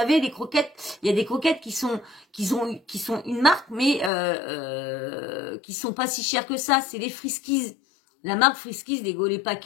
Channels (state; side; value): drops out; right; at 4.1 s